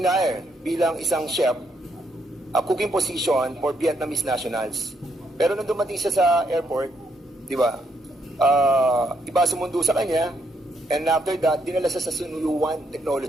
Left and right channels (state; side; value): normal; both; correlation 0.75